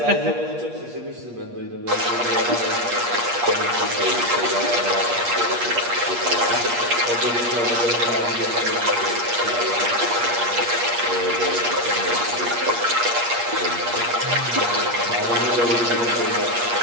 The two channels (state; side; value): late; left; 8.4 ms